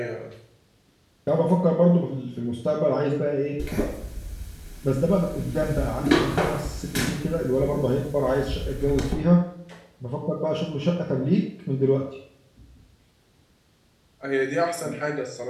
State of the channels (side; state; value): both; identical; correlation 1.00